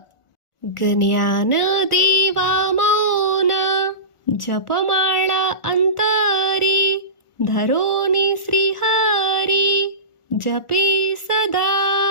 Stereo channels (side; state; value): right; late; 1.4 ms